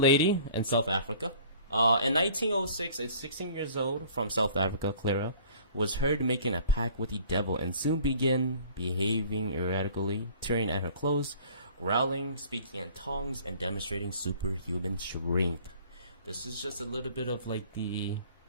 in South Africa. In 1906, a 16 years old from South Africa, Clara, was heard making a pact with the devil and soon began behaving erratically, tearing at her clothes, growling, speaking in tongues, and demonstrating superhuman strength. This is just a little bit of like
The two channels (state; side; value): inverted; both; correlation -0.50